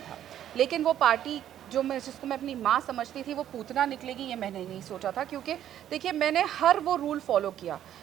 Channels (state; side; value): quieter; left; 11.0 dB